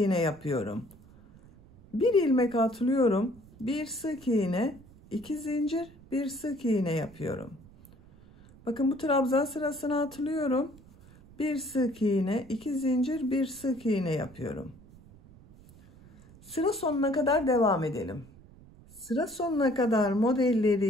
yapıyorum. Bir ilmek atlıyorum. Bir sık iğne, 2 zincir, bir sık iğne yapıyorum. Bakın bu trabzan sırasını atlıyorum. Bir sık iğne, 2 zincir, bir sık iğne yapıyorum. Sıra sonuna kadar devam edelim. Sıra sonuna kadar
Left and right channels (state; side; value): noise; right; rumble, 23 dB below the sound